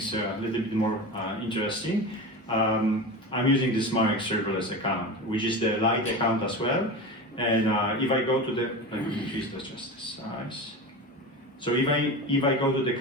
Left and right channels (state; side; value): normal; both; correlation 0.27